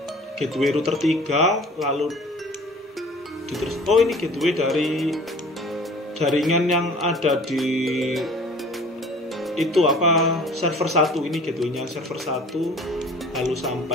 gateway router 3, lalu oh, ini gateway dari jaringan yang ada di itu apa, server 1. Ini gateway-nya server 1, lalu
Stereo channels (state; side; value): normal; both; correlation 0.47